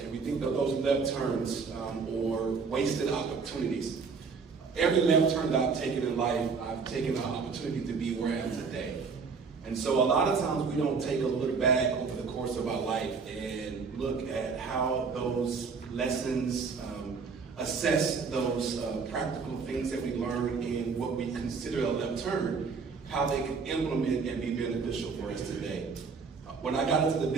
we think that those left turns or wasted opportunities. Every left turn that I've taken in life, I've taken the opportunity to be where I am today. And so a lot of times we don't take a look back over the course of our life and look at how those lessons, assess those practical things that we learn in what we consider a left turn, how they can implement and be beneficial for us today. When I got into the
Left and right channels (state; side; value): quieter; left; 5.1 dB